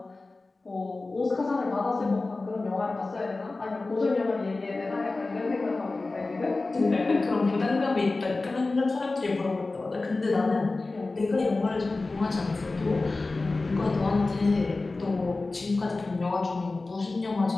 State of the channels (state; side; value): quieter; right; 3.4 dB